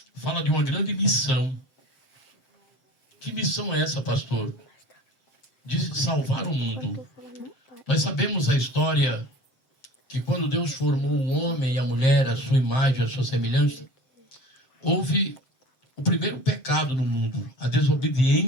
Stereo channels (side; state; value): right; late; 7.7 ms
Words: fala de uma grande missão. Que missão é essa, pastor? De salvar o mundo. Nós sabemos a história que quando Deus formou o homem e a mulher, a sua imagem, a sua semelhança, houve o primeiro pecado no mundo, a